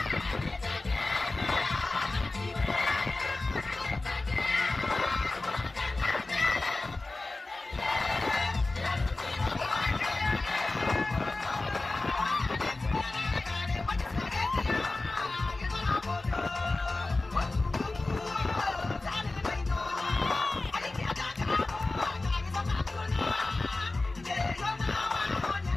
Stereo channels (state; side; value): quieter; right; 3.2 dB